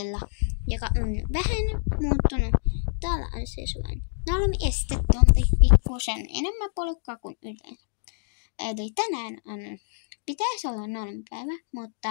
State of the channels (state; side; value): silent; right; digital silence